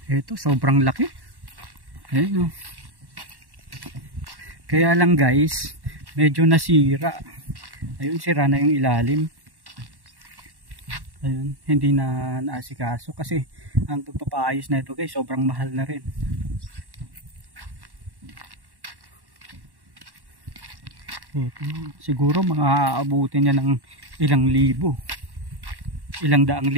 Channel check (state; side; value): late; left; 1.1 ms